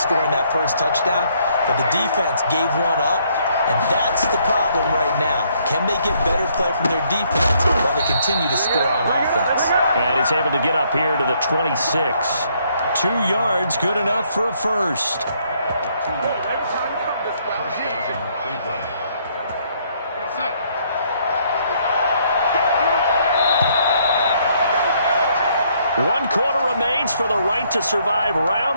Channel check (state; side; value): inverted; both; correlation -0.69